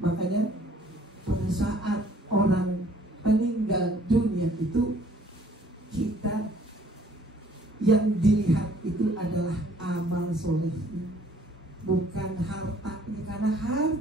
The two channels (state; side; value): normal; both; correlation 0.58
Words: Makanya pada saat orang meninggal dunia itu, kita yang dilihat itu adalah amal solehnya, bukan hartanya, karena